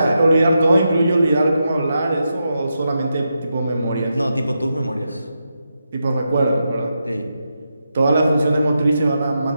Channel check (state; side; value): inverted; both; correlation -0.86